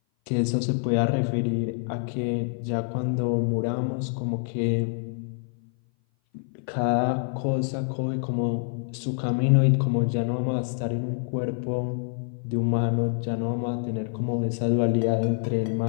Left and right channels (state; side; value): silent; right; 58 dB below the other